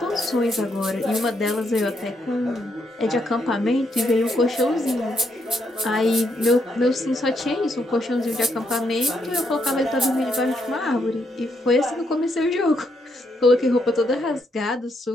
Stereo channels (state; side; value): normal; both; correlation 0.77